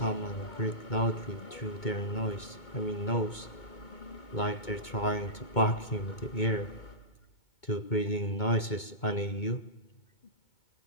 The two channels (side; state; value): right; late; 2.2 ms